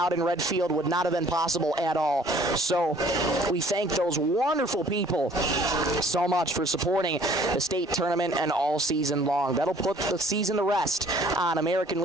in Redfield would not have been possible at all. So we thank those wonderful people so much for supporting the state tournament and all season long. That'll put the season to rest on American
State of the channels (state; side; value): normal; both; correlation 0.55